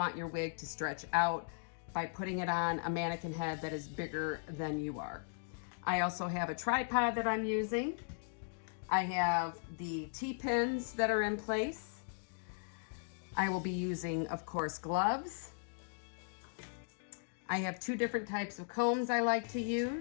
your wig to stretch out by putting it on a mannequin head that is bigger than you are. I also have a tripod that I'm using. I have the T-pins that are in place. I will be using, of course, gloves. I have 2 different types of combs I like to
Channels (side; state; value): right; silent; digital silence